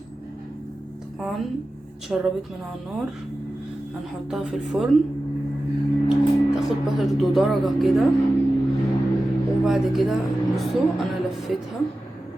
طبعا اتشربت من على النار. هنحطها في الفرن تاخد برضو درجه كده وبعد كده بصوا انا لفيتها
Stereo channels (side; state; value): both; normal; correlation 0.94